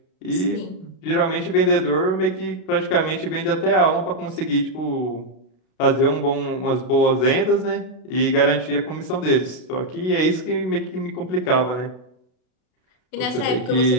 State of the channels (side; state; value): right; late; 32 ms